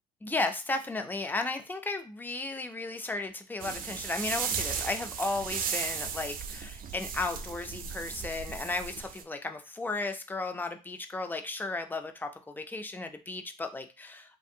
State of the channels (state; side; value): normal; both; correlation 0.45